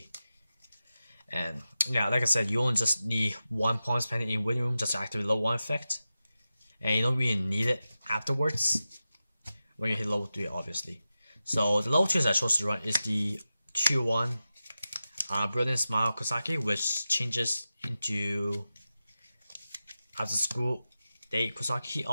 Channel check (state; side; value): inverted; both; correlation -0.93